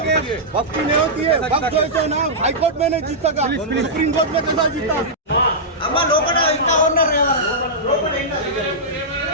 वक्फ की नहीं होती है वक्फ जो है ना हाई कोर्ट में नहीं जीत सका सुप्रीम कोर्ट में कैसा जीता అమ్మ లోపల ఇంకా ఉన్నారు కదా లోపల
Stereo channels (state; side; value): normal; both; correlation -0.12